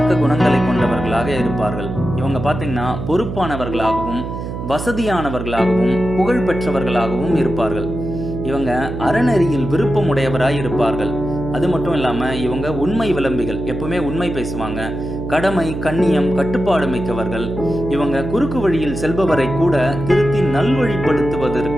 குணங்களை கொண்டவர்களாக இருப்பார்கள். இவங்க பார்த்தீங்கன்னா பொறுப்பானவர்களாகவும் வசதியானவர்களாகவும் புகழ் பெற்றவர்களாகவும் இருப்பார்கள். இவங்க அறநெறியில் விருப்பமுடையவராய் இருப்பார்கள். அது மட்டும் இல்லாமல் இவங்க உண்மை விளம்பிகள். எப்பவுமே உண்மை பேசுவாங்க. கடமை, கண்ணியம், கட்டுப்பாடு மிக்கவர்கள். இவங்க குறுக்கு வழியில் செல்பவரை கூட திருத்தி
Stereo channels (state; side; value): noise; right; hum, 6 dB below the sound